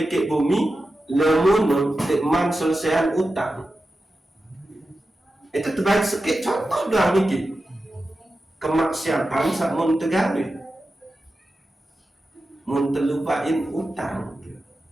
bumi lemun tekman selesaian utang. Itu terbaik sedikit contoh doang niki. Kemaksiatan sak mun tegawe. Mun terlupain utang.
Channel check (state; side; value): normal; both; correlation 0.92